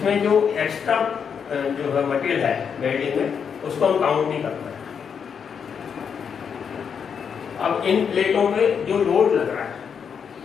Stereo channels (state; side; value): quieter; right; 6.9 dB